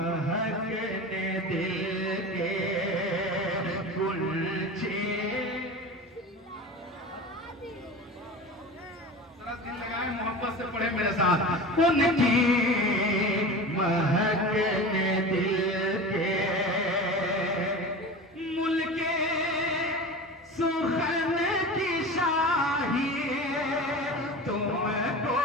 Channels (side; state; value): both; normal; correlation 0.32